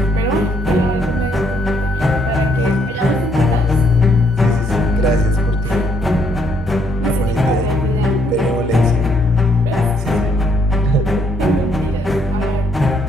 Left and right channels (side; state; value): both; normal; correlation 0.70